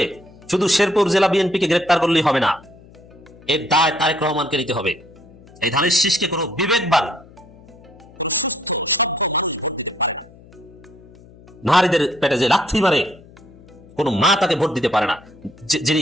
শুধু শেরপুর জেলা বিএনপিকে গ্রেপ্তার করলেই হবে না, এর দায় তারেক রহমানকে নিতে হবে। এই ধানের শীষকে কোনো বিবেকবান নারীদের পেটে যে লাথি মারে, কোনো মা তাকে ভোট দিতে পারে না। যিনি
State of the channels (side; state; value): left; noise; hum, 23 dB below the sound